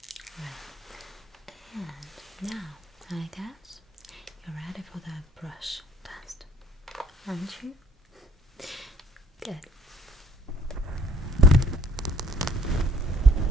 and now I guess you're ready for the brush test, aren't you? Good.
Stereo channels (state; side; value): normal; both; correlation 0.58